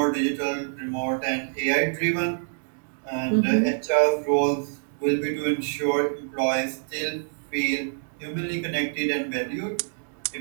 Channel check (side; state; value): left; silent; digital silence